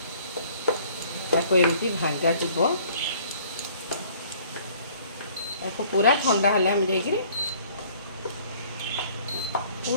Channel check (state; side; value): inverted; both; correlation -0.56